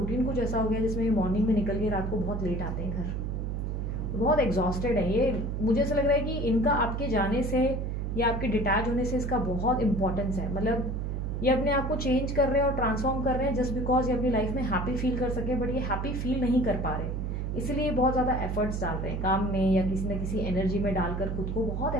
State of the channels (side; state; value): right; noise; hum, 2 dB below the sound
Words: कुछ ऐसा हो गया जिसमें ये मॉर्निंग में निकल के रात को बहुत लेट आते हैं घर, बहुत एग्जॉस्टेड है ये। मुझे ऐसा लग रहा है कि इनका आपके जाने से या आपके डिटैच होने से इसका बहुत इंपॉर्टेंस है। मतलब ये अपने आप को चेंज कर रहे हैं और ट्रांसफॉर्म कर रहे हैं जस्ट बिकॉज ये अपनी लाइफ में हैप्पी फील कर सके, बट ये हैप्पी फील नहीं कर पा रहे, इसलिए ये बहुत ज्यादा एफर्ट्स डाल रहे हैं काम में या किसी न किसी एनर्जी में डालकर खुद को बहुत